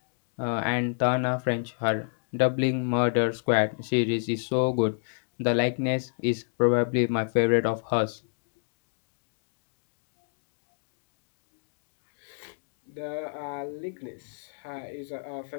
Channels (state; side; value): silent; right; digital silence